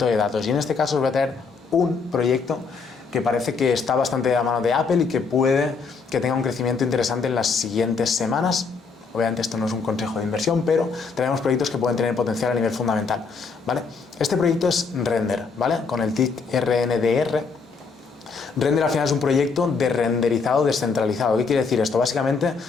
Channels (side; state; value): right; quieter; 4.9 dB